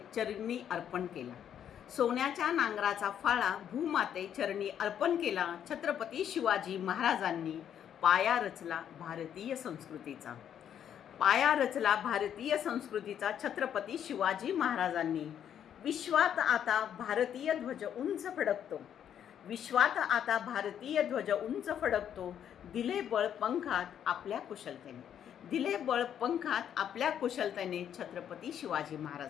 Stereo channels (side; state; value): right; quieter; 9.4 dB